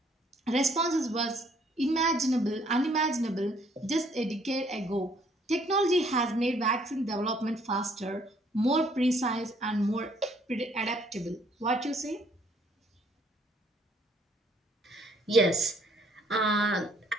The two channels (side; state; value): both; normal; correlation 0.64